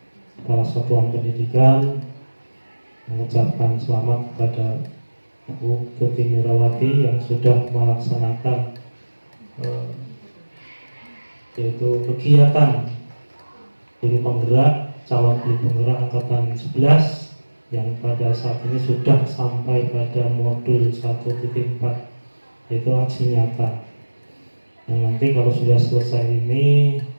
Kepala Satuan Pendidikan mengucapkan selamat kepada Bu Tuti Mirawati yang sudah melaksanakan yaitu kegiatan guru penggerak, calon guru penggerak angkatan 11 yang pada saat ini sudah sampai pada modul 1.4, yaitu aksi nyata. Yang nanti kalau sudah selesai ini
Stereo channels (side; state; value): both; inverted; correlation -1.00